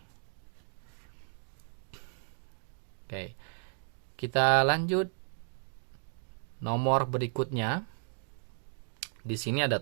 Oke. Kita lanjut. Nomor berikutnya. Di sini ada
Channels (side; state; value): left; silent; 55 dB below the other